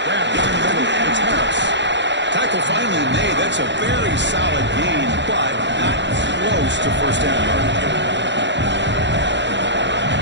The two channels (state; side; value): late; left; 0.52 ms